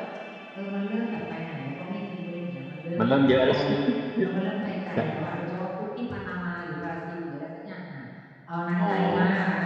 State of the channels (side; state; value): both; identical; correlation 1.00